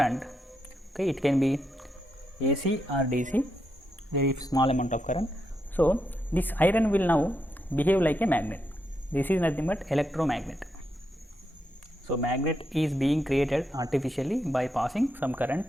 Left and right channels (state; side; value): normal; both; correlation 0.82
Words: okay, it can be AC or DC, very small amount of current. So, this iron will now behave like a magnet. This is nothing but electromagnet. So, magnet is being created artificially by passing some